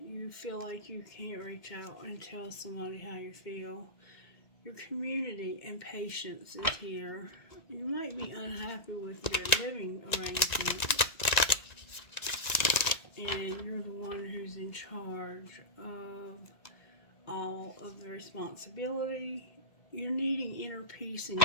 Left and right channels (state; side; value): late; right; 1.9 ms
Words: you feel like you can't reach out and tell somebody how you feel. Your community and patience is here. You might be unhappy with your living arrangement, and you're the one who's in charge of all of the responsibility. You're needing inner peace in